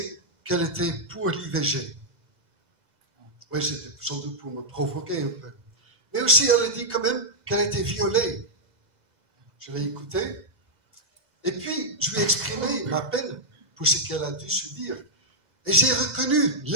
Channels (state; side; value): late; left; 2.0 ms